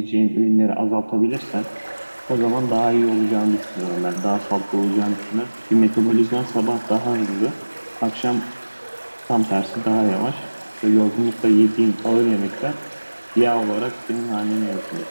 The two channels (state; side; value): inverted; both; correlation -1.00